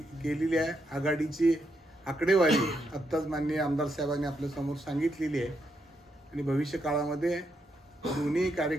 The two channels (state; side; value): normal; both; correlation 0.80